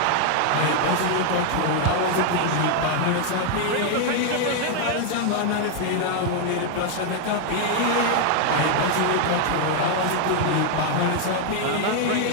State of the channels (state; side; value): different; both; correlation 0.00